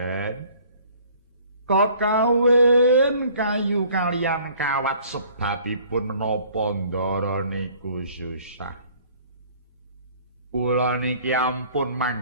Kakawin kayu kalian kawat sebabipun menapa ndara niku susah. Kula niki ampun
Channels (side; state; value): both; inverted; correlation -0.55